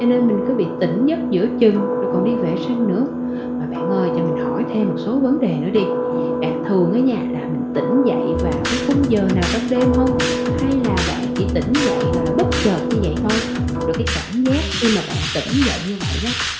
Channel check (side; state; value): both; identical; correlation 1.00